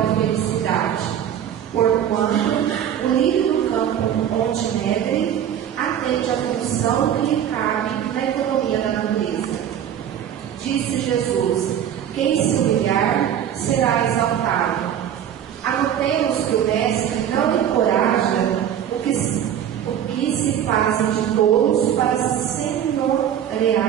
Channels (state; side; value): quieter; left; 9.7 dB